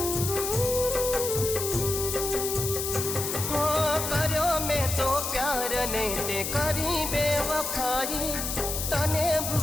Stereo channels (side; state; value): left; noise; hiss, 3 dB below the sound